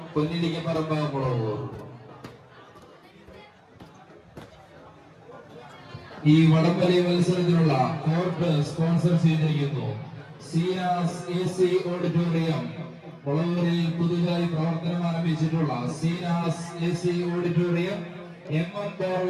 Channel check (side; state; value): both; identical; correlation 1.00